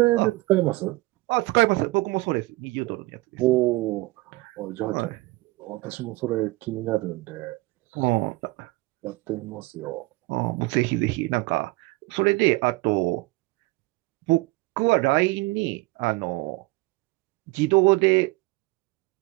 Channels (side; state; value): left; quieter; 21.4 dB